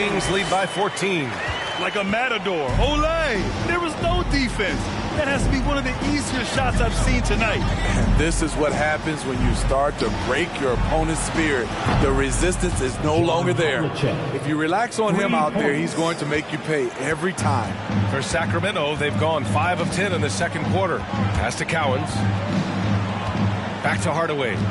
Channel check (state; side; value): identical; both; correlation 1.00